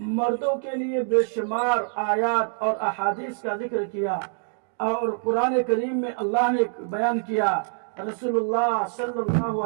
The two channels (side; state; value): left; silent; digital silence